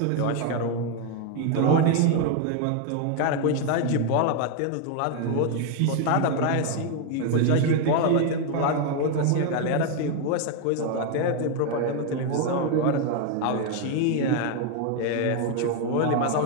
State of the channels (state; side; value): different; both; correlation 0.01